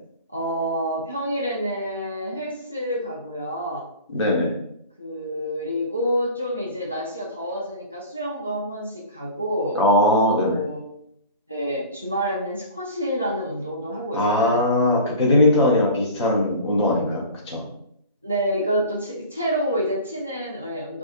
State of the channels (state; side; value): inverted; both; correlation -0.39